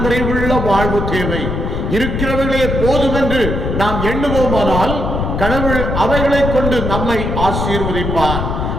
நிறைவுள்ள வாழ்வு தேவை. இருக்கிறவர்களே போதும் என்று நாம் எண்ணுவோமானால் கடவுள் அவைகளை கொண்டு நம்மை ஆசீர்வதிப்பார்.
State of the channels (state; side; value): noise; left; rumble, 2 dB below the sound